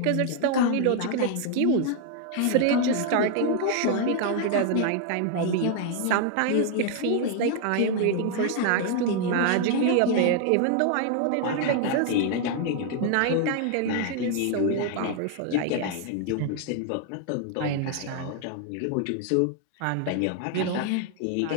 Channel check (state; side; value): different; both; correlation 0.00